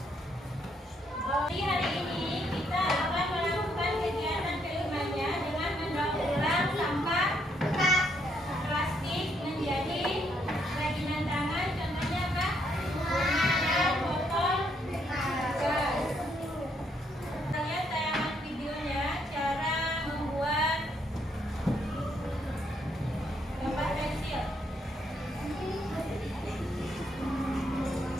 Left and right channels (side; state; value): both; normal; correlation 0.73